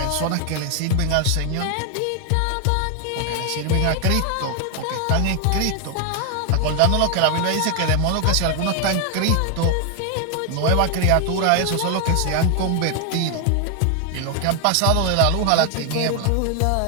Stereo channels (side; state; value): both; different; correlation 0.00